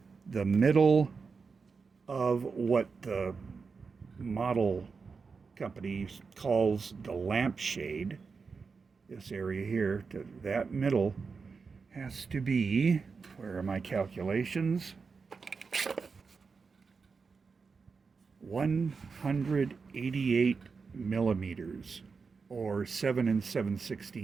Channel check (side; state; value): left; quieter; 5.0 dB